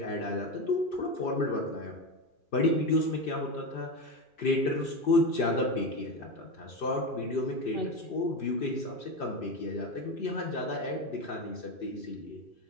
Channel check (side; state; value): right; late; 2.4 ms